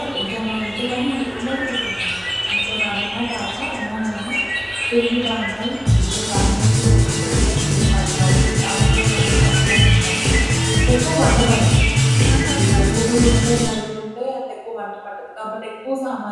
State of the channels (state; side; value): identical; both; correlation 1.00